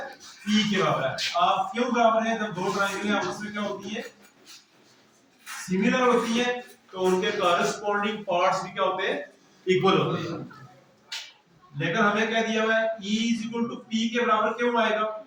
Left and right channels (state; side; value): identical; both; correlation 1.00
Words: P के बराबर है। आप क्यों बराबर है, जब दो ट्रायंगल आपस में क्या होती है, सिमिलर होती है, तो उनके कॉरस्पॉन्डिंग पार्ट्स भी क्या होते हैं, इक्वल होते हैं। लेकिन हमें क्या दिया हुआ है, E is equal to P के बराबर क्यों आएगा,